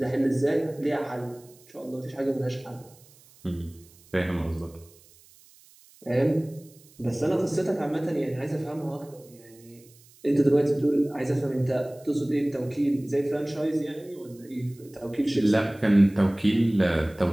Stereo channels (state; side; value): noise; right; hiss, 26 dB below the sound